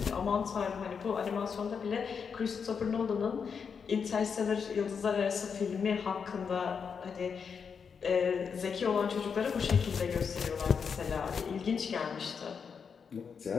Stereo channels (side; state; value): right; quieter; 6.3 dB